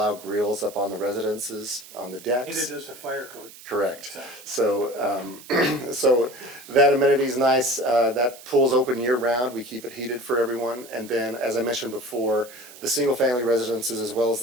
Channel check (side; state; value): right; noise; hiss, 18 dB below the sound